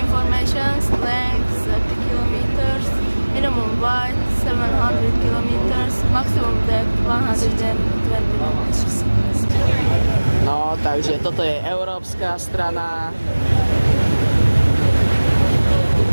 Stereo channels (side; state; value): both; inverted; correlation -1.00